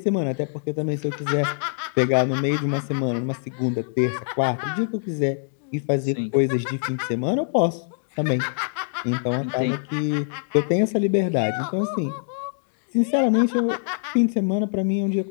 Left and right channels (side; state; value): right; silent; digital silence